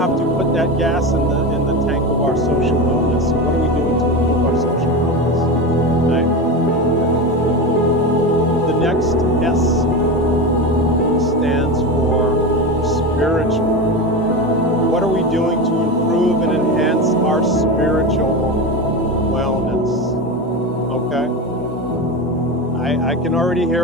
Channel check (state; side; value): normal; both; correlation 0.21